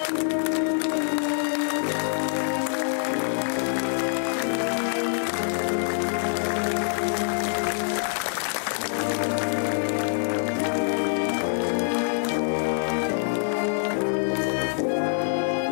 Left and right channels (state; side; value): silent; right; digital silence